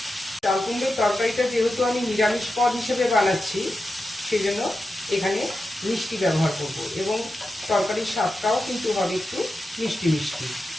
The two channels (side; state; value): both; normal; correlation 0.90